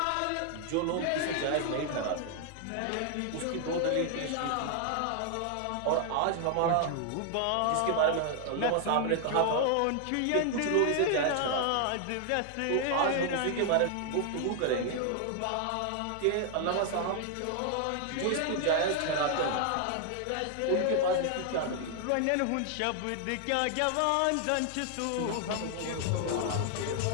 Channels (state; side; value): different; both; correlation 0.00